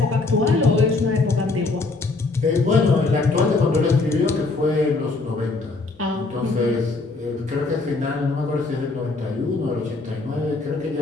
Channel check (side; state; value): right; quieter; 3.6 dB